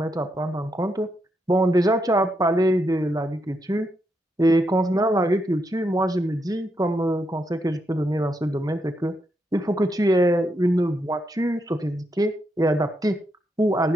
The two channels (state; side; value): normal; both; correlation 0.81